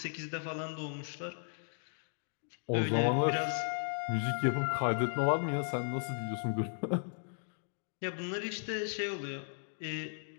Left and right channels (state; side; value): silent; right; digital silence